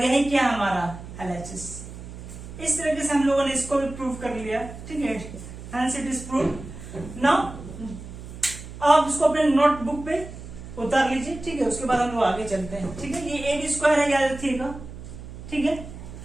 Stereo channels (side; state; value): right; noise; hum, 13 dB below the sound